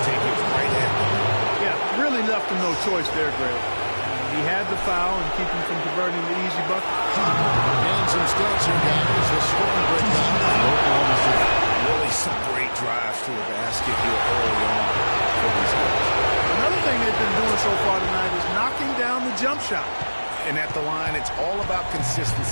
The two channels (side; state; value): both; inverted; correlation -1.00